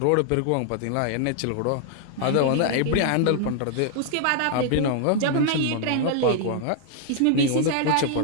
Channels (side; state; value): both; different; correlation 0.00